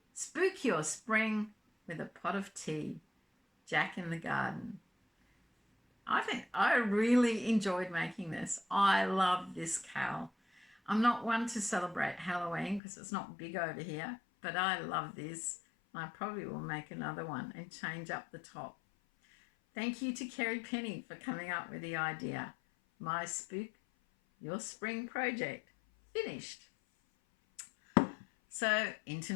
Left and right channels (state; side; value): drops out; right; at 12.8 s